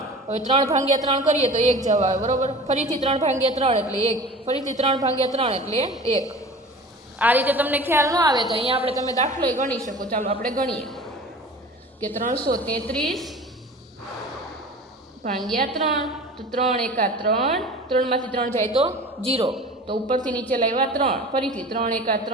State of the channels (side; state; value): both; normal; correlation 0.39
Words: હવે 3 ભાગ્યા 3 કરીએ તો 1 જવાબ આવે. બરાબર. ફરીથી 3 ભાગ્યા 3 એટલે 1, ફરીથી 3 ભાગ્યા 3 એટલે 1. આ રીતે તમને ખ્યાલ ન આવે તો અહીંયા આપણે તમે દાખલો ગણી શકો. ચાલો આપણે ગણીએ કે 333 ભાગ્યા 3, તો 3 એકા 3, 3 માંથી 3 જાય તો 0, તો ઉપરથી નીચે લાવ્યા 3, ફરીથી 3 એકા